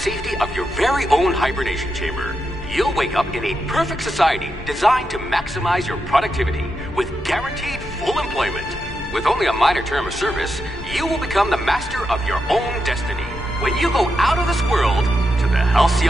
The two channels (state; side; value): normal; both; correlation 0.85